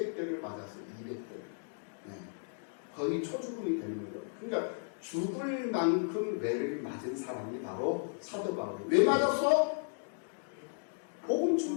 맞았어요. 200대. 거의 초죽음이 되는 거죠. 그러니까 죽을 만큼 매를 맞은 사람이 바로 사도 바울이에요. 왜 맞았어? 복음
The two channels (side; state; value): right; silent; digital silence